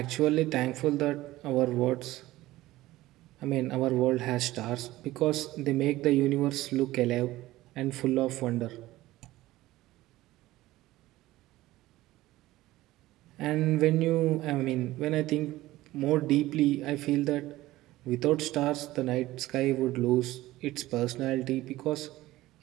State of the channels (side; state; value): left; quieter; 17.0 dB